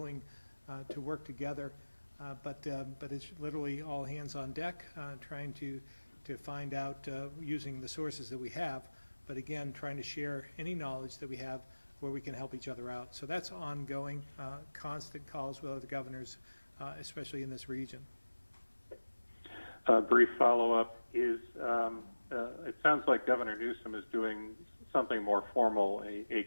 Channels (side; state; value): both; inverted; correlation -1.00